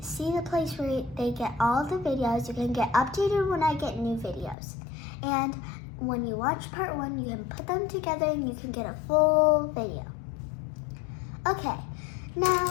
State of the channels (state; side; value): drops out; right; at 4.5 s